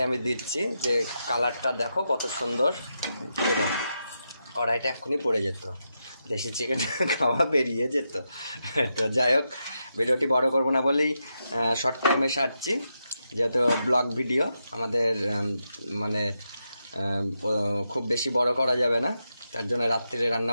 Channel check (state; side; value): inverted; both; correlation -0.85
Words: আমি দিচ্ছি। যে কালারটা দেখো কত সুন্দর, কড়াইটা এক্ষুনি পড়ে যেত, দেশি চিকেন খাওয়া বেরিয়ে যেত। তো যাই হোক, ভিডিওটি বড় করব না বলেই শর্ট টাইমে সারছি, যেহেতু ব্লগ ভিডিও আমাদের মানে খুব বেশি বড় করা যাবে না, তার জন্য রাত্রে